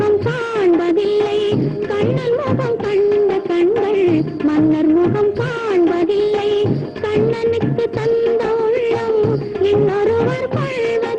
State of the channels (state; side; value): identical; both; correlation 1.00